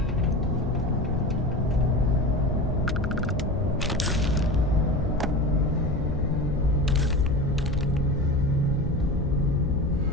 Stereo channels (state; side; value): noise; left; hum, 11 dB below the sound